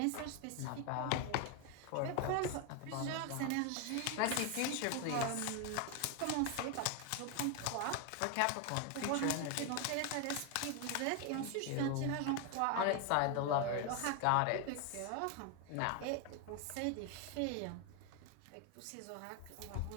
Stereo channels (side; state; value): both; different; correlation 0.01